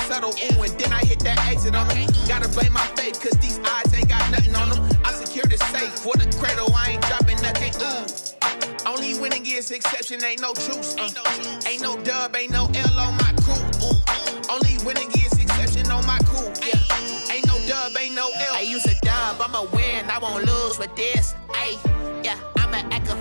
subtle, ooh, and then I hit that exit on them. Gotta blame my faith, cause these eyes ain't got nothing on them. I secure the safe for the cradle, I ain't dropping nothing, ooh. Only winning is exception, ain't no truce. Ain't no dub, ain't no L on my crew. Only winning is exception on my crew. Yeah, ain't no dub, ain't no L. I use a dub, I'ma win, I won't lose with this. Yeah, I'ma act a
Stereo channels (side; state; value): both; inverted; correlation -1.00